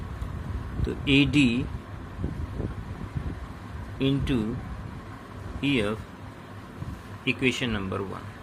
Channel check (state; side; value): identical; both; correlation 1.00